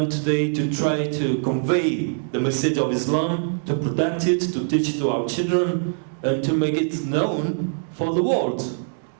today, to try to convey the message of Islam, to protect it, to teach it to our children, and to make it known for the world.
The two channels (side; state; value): left; silent; digital silence